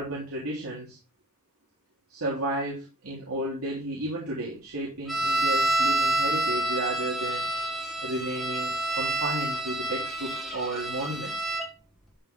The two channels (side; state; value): both; normal; correlation 0.51